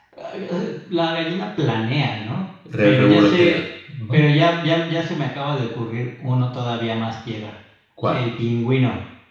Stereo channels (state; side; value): identical; both; correlation 1.00